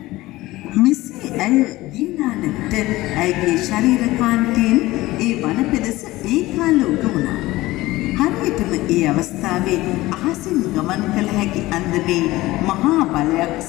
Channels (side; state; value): right; quieter; 18.4 dB